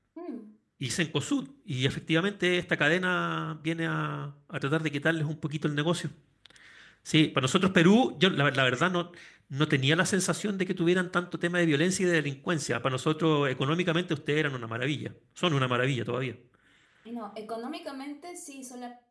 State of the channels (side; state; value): both; identical; correlation 1.00